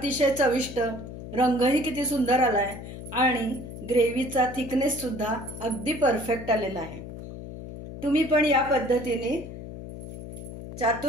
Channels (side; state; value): left; noise; hum, 11 dB below the sound